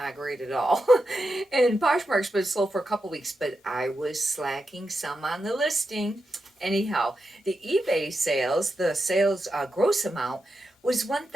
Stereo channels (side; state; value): both; normal; correlation 0.88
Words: great at all. And Poshmark's been slow for a couple weeks, but I was slacking some on the listing. Anyhow, the eBay sales, the sales gross amount was